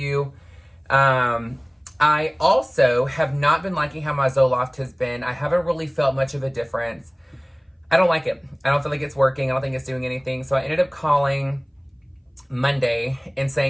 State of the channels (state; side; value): identical; both; correlation 1.00